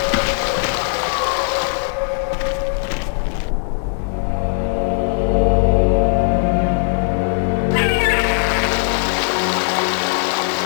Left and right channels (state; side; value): silent; right; 67 dB below the other